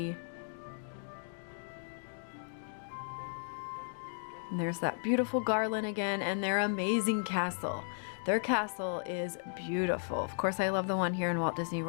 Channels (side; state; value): right; silent; digital silence